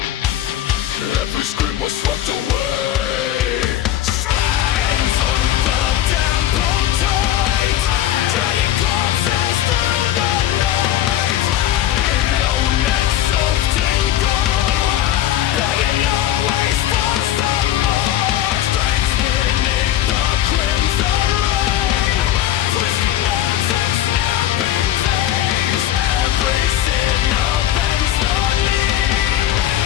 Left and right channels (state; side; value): quieter; right; 12.4 dB